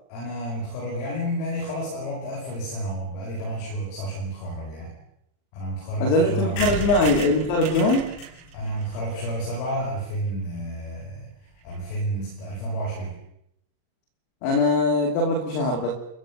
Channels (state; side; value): late; right; 39 ms